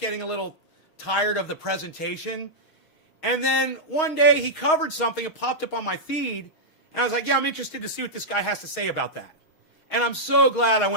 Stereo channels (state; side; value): late; right; 6.4 ms